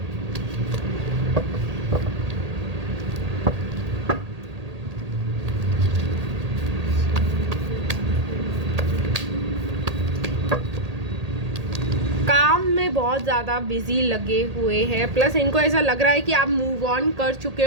काम में बहुत ज़्यादा बिजी लगे हुए हैं, प्लस इनको ऐसा लग रहा है कि आप मूव ऑन कर चुके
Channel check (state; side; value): late; left; 1.8 ms